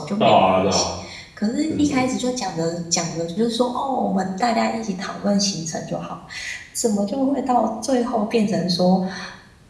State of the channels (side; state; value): both; identical; correlation 1.00